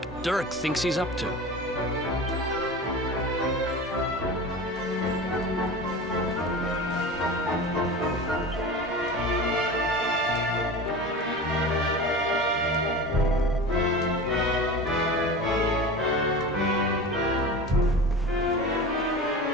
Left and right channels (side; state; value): both; normal; correlation 0.32